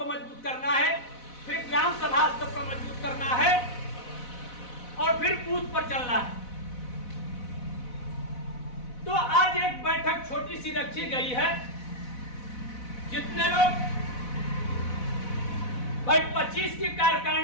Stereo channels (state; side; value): late; right; 4.0 ms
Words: मजबूत करना है, फिर ग्राम सभा स्तर पर मजबूत करना है और फिर बूथ पर चलना है। तो आज एक बैठक छोटी सी रखी गई है, जितने लोग भाई 25 की